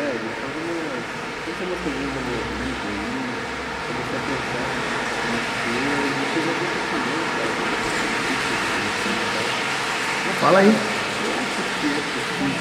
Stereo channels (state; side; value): identical; both; correlation 1.00